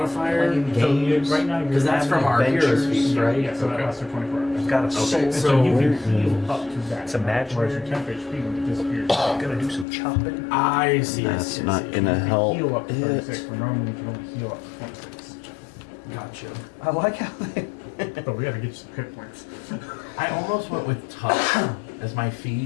So right now you're Because that's from our heroes feast, right? Yeah, so that lasts for 24 hours. I've got a Okay, soul. And so so you can heal up to that. It's imaginary. Whereas your 10 HP will disappear. I'm gonna do some chopping. I see. That's I not see. gonna help Heal up to it. 36, but normally you can only heal up to 26. Gotcha. I like how they. But we gotta get you some hit points. I almost went with touch as my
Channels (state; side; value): drops out; right; at 9.9 s